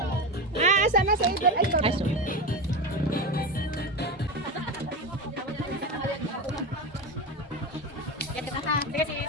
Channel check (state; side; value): normal; both; correlation 0.19